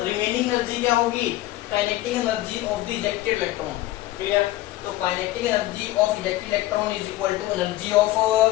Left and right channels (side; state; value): right; quieter; 16.4 dB